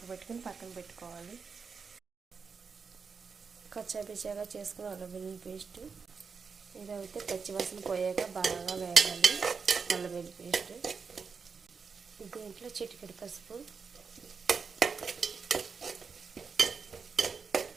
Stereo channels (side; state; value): left; quieter; 5.5 dB